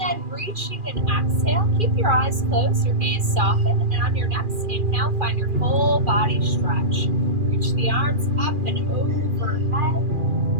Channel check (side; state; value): left; late; 2.4 ms